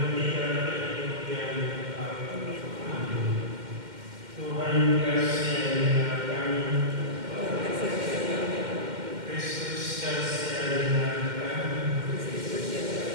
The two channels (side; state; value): left; late; 2.1 ms